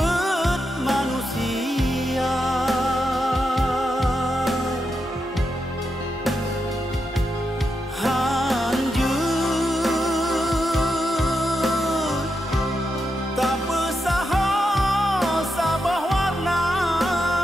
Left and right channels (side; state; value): both; normal; correlation 0.86